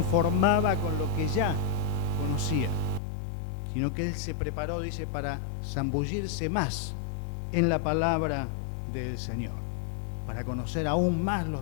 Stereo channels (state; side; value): drops out; right; at 3.0 s